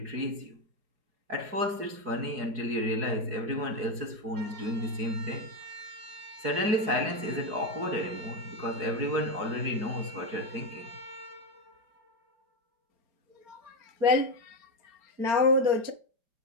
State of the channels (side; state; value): left; late; 4.8 ms